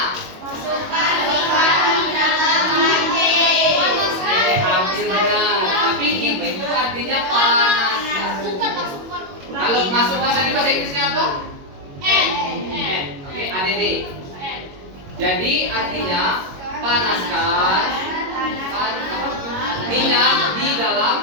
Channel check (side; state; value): left; late; 22 ms